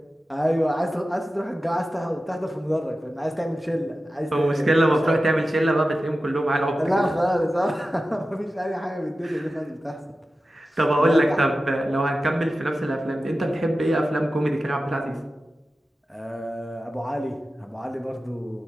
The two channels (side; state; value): both; normal; correlation 0.94